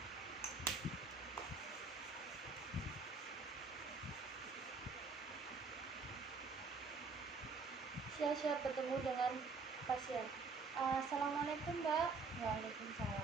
Saya siap bertemu dengan pasien. Assalamualaikum Mbak.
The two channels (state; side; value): quieter; left; 4.3 dB